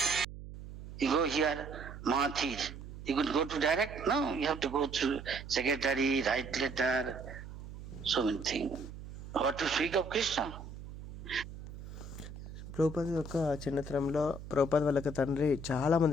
You go here, Mahathir. You could go to direct? No, you have to go through secretary, write letter, so many things. What to speak of Krishna? Prabhupada యొక్క చిన్నతనంలో ప్రభుపాద వాళ్ళకి తండ్రి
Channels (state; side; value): noise; right; hum, 12 dB below the sound